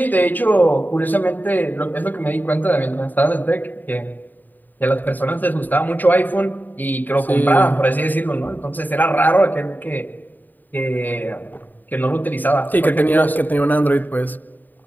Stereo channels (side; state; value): right; late; 0.087 ms